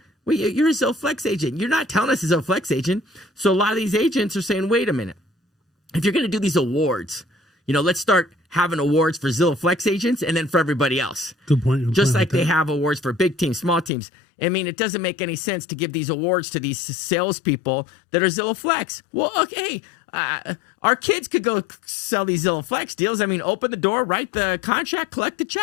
Wait, you're a Zillow Flex agent. You're not telling us it's a Zillow Flex agent. So a lot of these agents are saying, wait a minute. If you're going to do these awards, let's start having awards for Zillow Flex agents and then for everybody else. Good point. Just like they have awards for big teams, small teams. I mean, it doesn't make any sense to give these awards to these salespeople that are Zillow Flex. Well, okay, our kids could go sell these Zillow Flex deals. I mean, open the door, write the contract, collect the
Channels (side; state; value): right; drops out; at 13.9 s